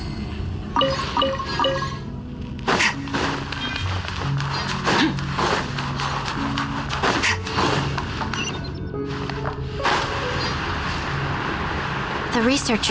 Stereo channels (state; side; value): identical; both; correlation 1.00